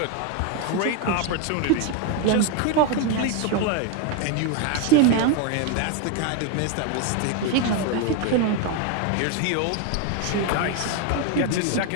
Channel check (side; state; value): both; different; correlation 0.02